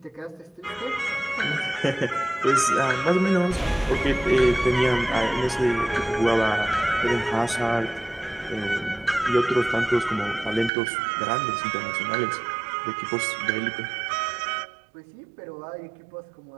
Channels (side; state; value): left; drops out; at 10.7 s